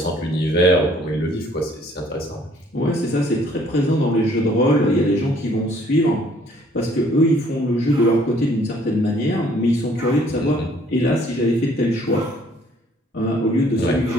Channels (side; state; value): both; normal; correlation 0.61